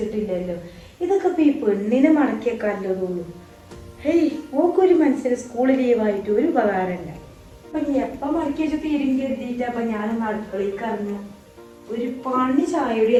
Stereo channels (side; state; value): both; identical; correlation 1.00